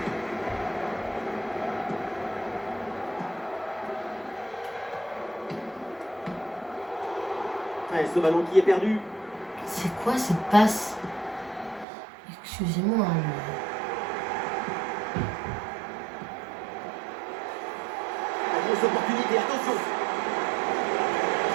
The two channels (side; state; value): left; drops out; at 11.9 s